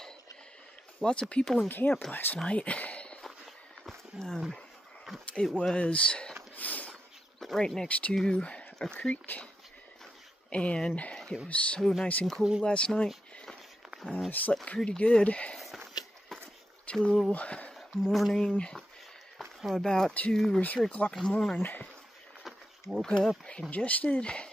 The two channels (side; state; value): both; normal; correlation 0.86